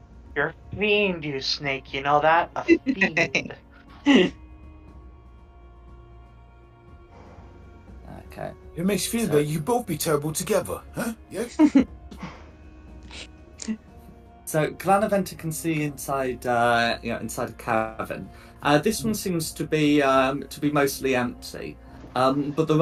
You're a fiend, you snake, you know that? A fiend. Okay. It makes you feel So- that you both be terrible together, huh? Yeah. So Glanaventa can see inside, inside a cavern. This one seems to be mostly empty, but there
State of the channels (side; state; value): both; identical; correlation 1.00